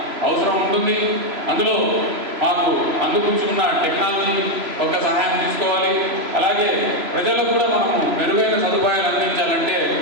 అవసరం ఉంటుంది. అందులో మాకు అందుకుంచుకున్న టెక్నాలజీ ఒక సహాయం తీసుకోవాలి. అలాగే ప్రజలకు కూడా మనము మెరుగైన సదుపాయాలు అందించాలంటే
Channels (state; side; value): late; left; 3.0 ms